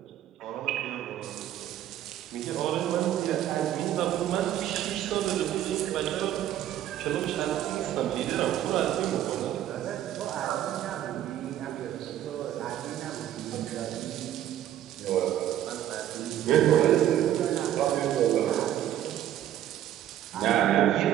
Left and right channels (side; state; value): left; quieter; 11.9 dB